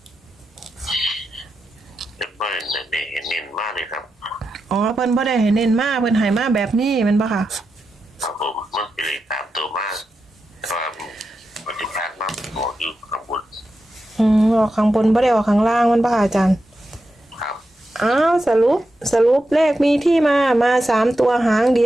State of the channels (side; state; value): both; normal; correlation 0.89